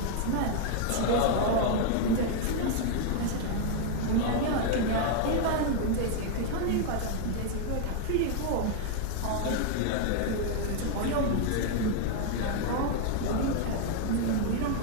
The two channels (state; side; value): different; both; correlation 0.00